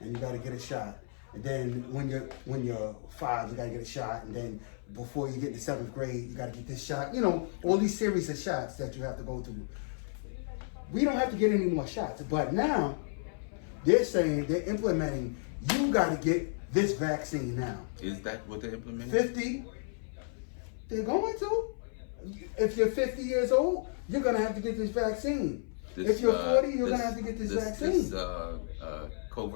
you got to get a shot, and then when you're 5, you got to get a shot, and then before you get to 7th grade, you got to get this shot. All these series of shots that you have to go through. We don't have to get any more shots, but now they're implementing, you got to get this vaccine now. Is that what they're implementing? 50, they're going to. If you're 50 years old, you're going to have to get this vaccine. If you're 40, you're going to have to get this vaccine.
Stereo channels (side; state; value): right; silent; 56 dB below the other